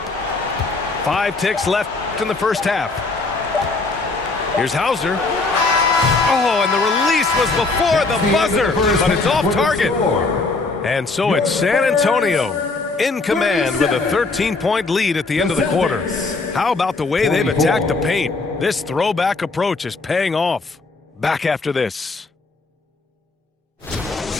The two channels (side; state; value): right; quieter; 3.7 dB